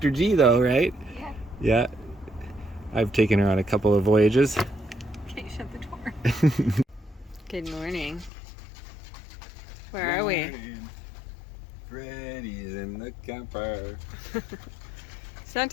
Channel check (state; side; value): drops out; right; at 8.3 s